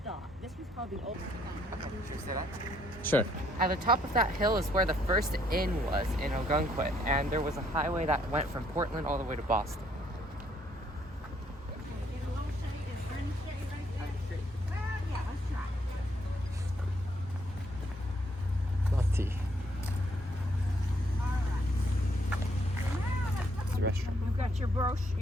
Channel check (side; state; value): both; normal; correlation 0.69